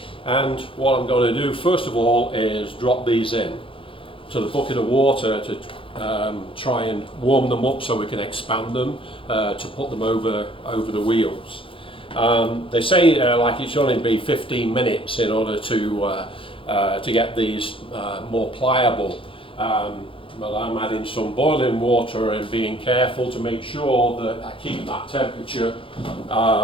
And what I'm going to do first of all is drop these in to the bucket of water to try and warm them up so we can expand them to put them over the wheels. They say like it should only be 15 minutes in order to get these more pliable. Well, I'm adding some boiling water and being careful to make sure that I keep that temperature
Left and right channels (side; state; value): right; late; 0.25 ms